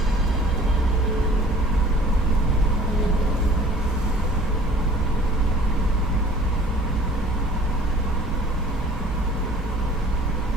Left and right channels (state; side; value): normal; both; correlation 0.50